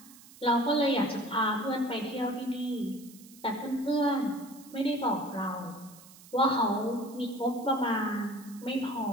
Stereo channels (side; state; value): right; noise; hiss, 21 dB below the sound